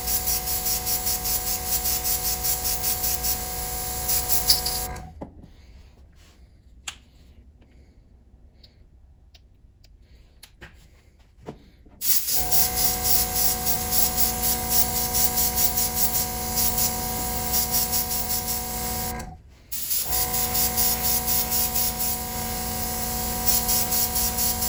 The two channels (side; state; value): both; identical; correlation 1.00